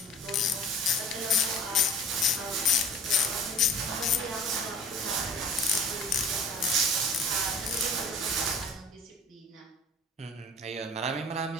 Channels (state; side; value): normal; both; correlation 0.44